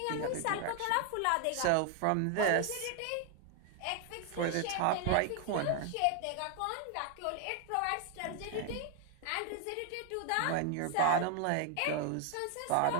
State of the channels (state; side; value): different; both; correlation 0.00